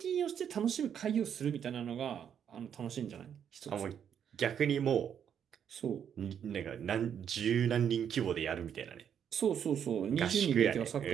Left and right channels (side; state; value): left; quieter; 8.5 dB